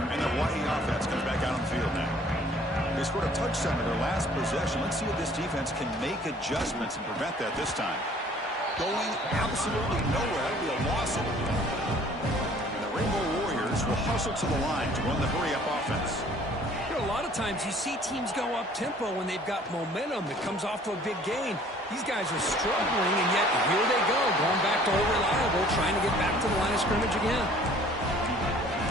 Hawaii offense comes back out on the field now. They scored a touchdown in their last possession. Let's see if this defense can make adjustments and prevent that this time. Going absolutely nowhere. That'll be a loss. And the Rainbow Warriors will hustle to the line to run the hurry-up offense. You know, a lot of times you see teams go up-tempo when they've got momentum that comes off to a big gain. These guys are struggling, and yet here they go, going back to old reliable, trying to get back to the line of scrimmage again.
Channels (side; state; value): both; normal; correlation 0.54